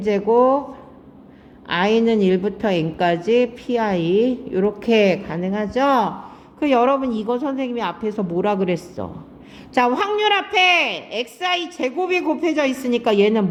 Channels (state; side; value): identical; both; correlation 1.00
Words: i는 1부터 n까지 pi 이렇게 가능하죠? 그 여러분 이거 선생님이 앞에서 뭐라 그랬어? 자, 확률 앞에 xi 제곱이 곱해져 있으니까